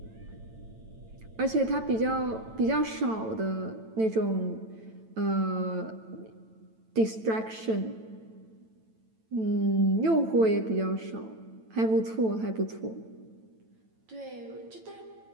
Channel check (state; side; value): late; left; 9.0 ms